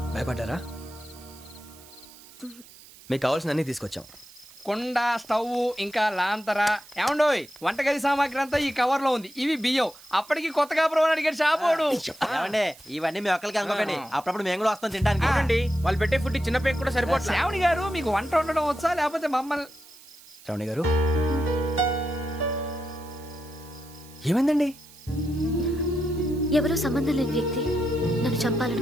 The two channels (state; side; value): noise; right; hiss, 22 dB below the sound